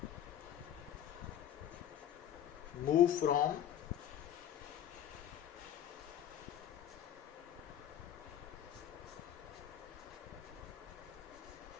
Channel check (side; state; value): right; quieter; 10.4 dB